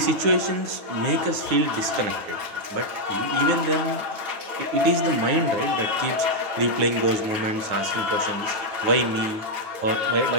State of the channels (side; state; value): left; late; 9.5 ms